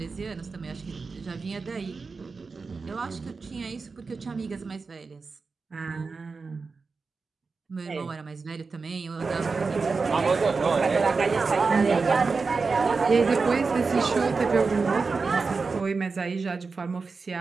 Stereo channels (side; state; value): left; quieter; 4.5 dB